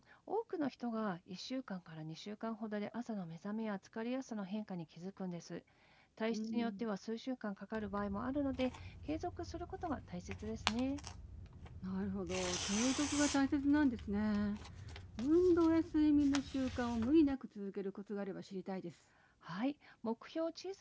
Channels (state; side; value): identical; both; correlation 1.00